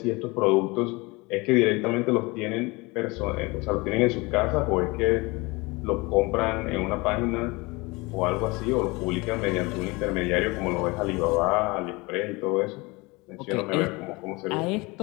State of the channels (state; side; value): quieter; right; 24.9 dB